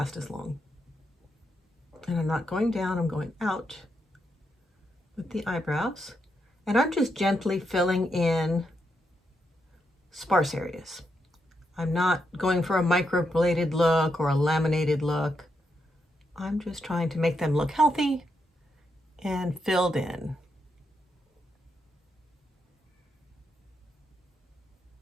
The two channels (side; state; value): both; normal; correlation 0.82